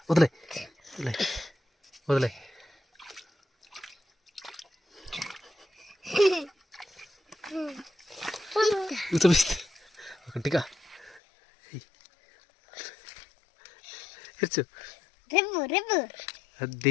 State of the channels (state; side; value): drops out; right; at 11.2 s